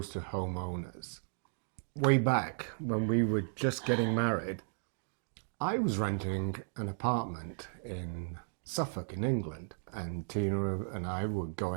to homeowners. Way back when we were just getting married, I was renting an apartment in Suffolk in England, and Tina and I were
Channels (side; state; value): left; silent; digital silence